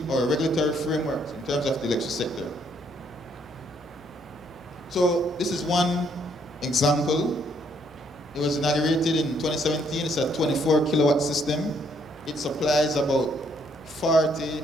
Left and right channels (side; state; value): both; normal; correlation 0.69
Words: our regulatory frameworks in terms of the electricity sector. So this is one example. It was inaugurated in 2017. It's a 24 kilowatt system. It supplies about 40